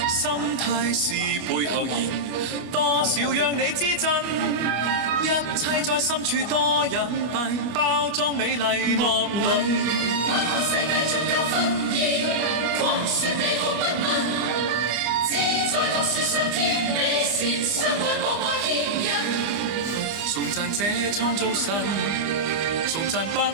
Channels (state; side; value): late; left; 24 ms